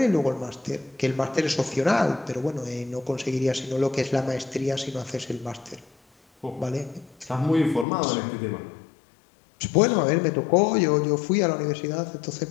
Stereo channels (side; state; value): right; drops out; at 7.9 s